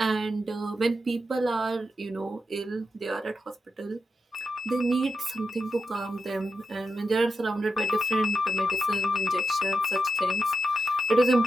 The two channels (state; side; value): normal; both; correlation 0.87